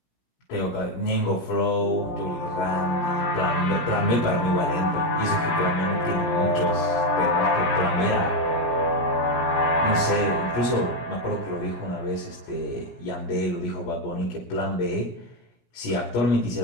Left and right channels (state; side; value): late; right; 17 ms